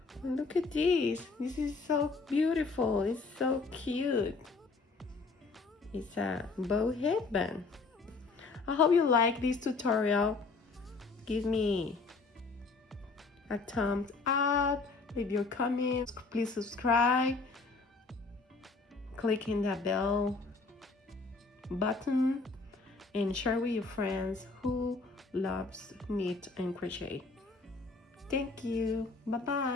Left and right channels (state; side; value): quieter; right; 4.0 dB